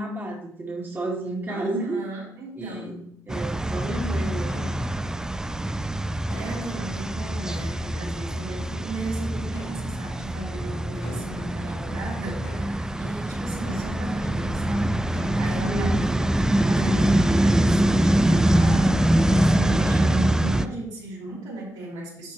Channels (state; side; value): normal; both; correlation 0.92